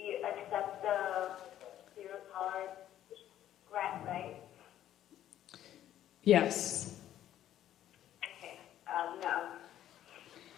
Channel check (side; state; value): right; quieter; 11.9 dB